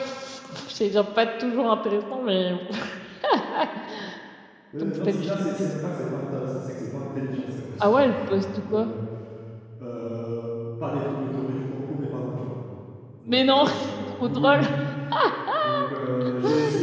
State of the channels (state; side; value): identical; both; correlation 1.00